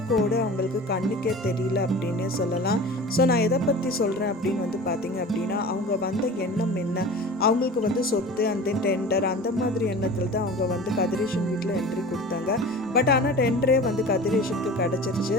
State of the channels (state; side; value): normal; both; correlation 0.37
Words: கோடு அவங்களுக்கு கண்ணுக்கே தெரியல அப்படின்னு சொல்லலாம். ஸோ நான் எதை பற்றி சொல்கிறேன் அப்படின்னு வந்து பார்த்தீங்க அப்படின்னா, அவங்க வந்த எண்ணம் என்ன, அவங்களுக்கு வந்து சொத்து அந்த டெண்டர் அந்த மாதிரி எண்ணத்தில் தான் அவங்க வந்து கதிரேஷன் வீட்டில் என்ட்ரி கொடுத்தாங்க. பட் ஆனால் டெண்டரே வந்து கதிரேஷனுக்கு